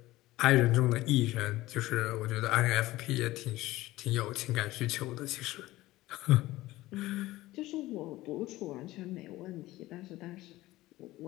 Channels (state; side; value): quieter; right; 17.6 dB